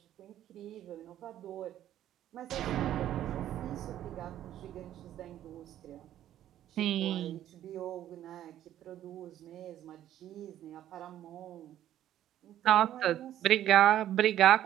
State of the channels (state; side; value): quieter; left; 12.0 dB